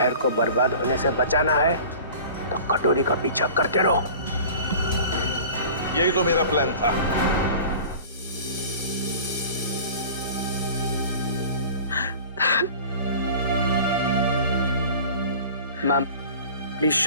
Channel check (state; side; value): inverted; both; correlation -0.41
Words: को बर्बाद होने से बचाना है तो कटोरी का पीछा करते रहो। यही तो मेरा प्लान था। मैम प्लीज